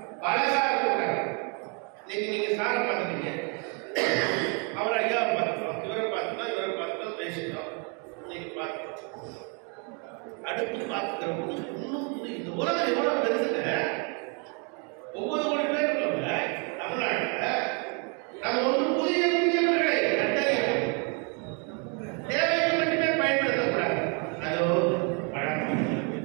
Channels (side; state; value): left; quieter; 36.0 dB